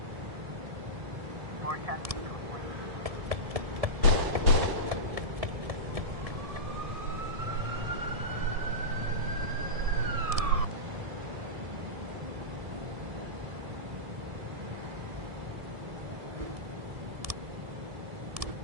Or 10B complete.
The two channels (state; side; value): late; left; 1.7 ms